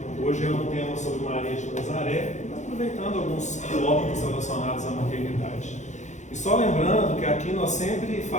Hoje é um tema sobre Maria de Nazaré, aproveitando alguns tópicos relacionados à maternidade. E só lembrando que aqui nós sempre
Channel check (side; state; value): right; late; 0.34 ms